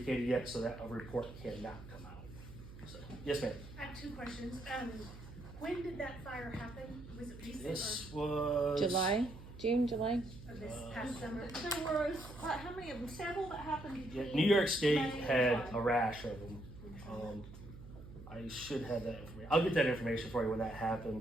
yet, so that a report cannot come out. So, yes, ma'am. I have 2 questions. When did that fire happen? Was it recent This was June, July. or this past summer? There was, how many of them, several that happened Yeah, between? New York State May and had July? a rash of them. I should have that information. I'll get that information for you when that happened.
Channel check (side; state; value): right; noise; hum, 15 dB below the sound